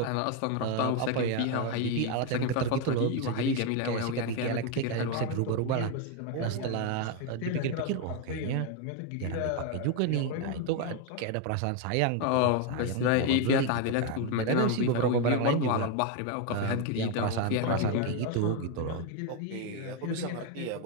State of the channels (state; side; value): different; both; correlation 0.02